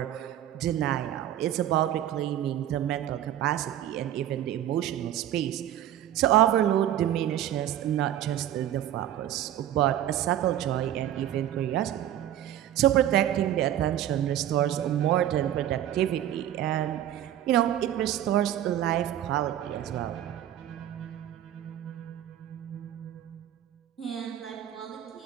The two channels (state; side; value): quieter; left; 11.8 dB